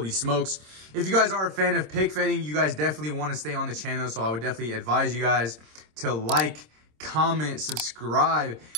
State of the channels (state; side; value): late; left; 26 ms